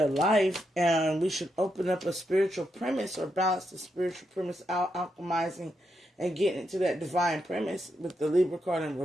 life, and we should open up a spiritual premise or balance the spiritual premise out, alchemizing and getting into that divine premise with the Libra card in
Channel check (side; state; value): both; normal; correlation 0.82